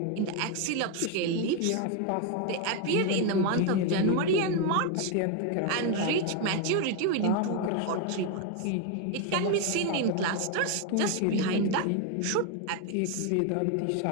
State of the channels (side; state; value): both; different; correlation 0.01